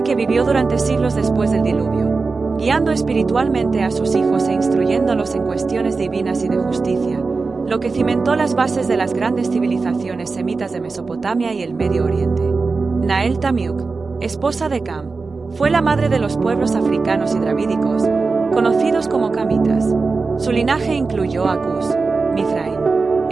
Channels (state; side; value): quieter; left; 4.2 dB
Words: que vivió durante siglos después del diluvio, guiando espiritualmente a sus hijos e instruyéndolos en cuestiones divinas y de justicia, lo que cimentó las bases de las grandes civilizaciones semitas de Mesopotamia y el Medio Oriente. Nael Tamiuk, esposa de Cam, fue la madre de los pueblos africanos y dravídicos, conocidos como camitas. Su linaje incluyó a Cus, Mizraim,